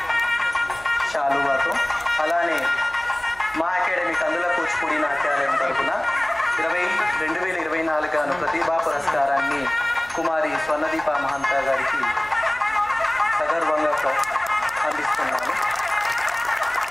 శాలువాతో. అలానే మా అకాడమీ కందుల కూచిపూడి నాట్యాలయం తరఫున 2024 గాను ప్రతిభా పురస్కారాన్ని కుమారి స్వర్ణదీప మహంత గారికి సగర్వంగా అందిస్తున్నాను.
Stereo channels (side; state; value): right; noise; hum, 24 dB below the sound